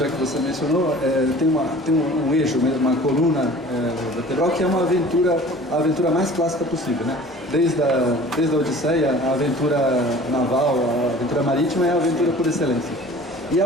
que você mencionou, tem um eixo mesmo, uma coluna vertebral, que é a aventura mais clássica possível, né? Desde a Odisseia, a aventura naval, a aventura marítima é a aventura por excelência. E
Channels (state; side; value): normal; both; correlation 0.45